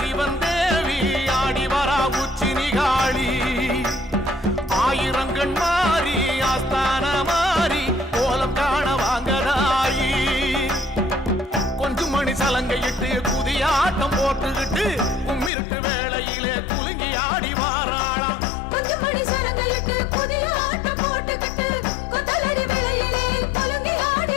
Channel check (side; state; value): right; drops out; at 15.5 s